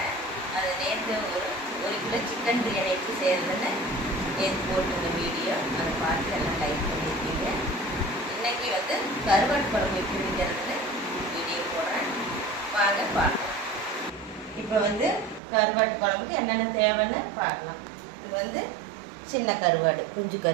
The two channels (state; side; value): drops out; left; at 15.4 s